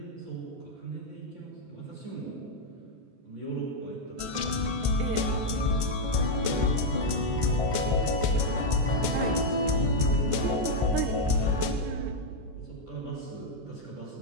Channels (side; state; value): left; late; 14 ms